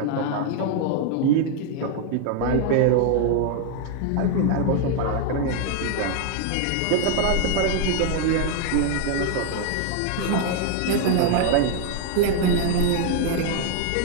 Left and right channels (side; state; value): both; different; correlation 0.00